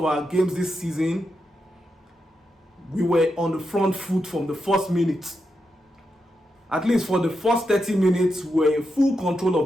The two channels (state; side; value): normal; both; correlation 0.86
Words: our games this season, we were on the front foot from the first minute. At least for the first 30 minutes, we were in full control